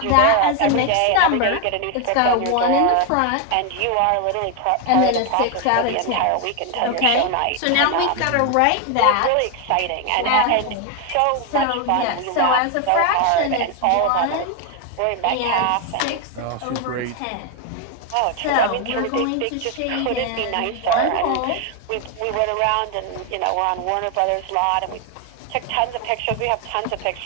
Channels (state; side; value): different; both; correlation 0.01